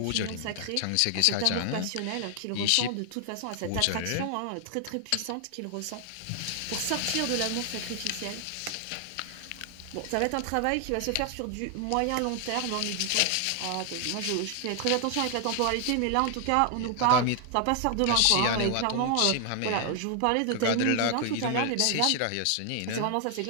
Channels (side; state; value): both; different; correlation 0.00